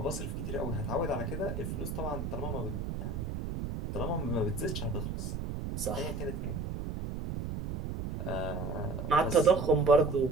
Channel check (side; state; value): right; noise; rumble, 4 dB below the sound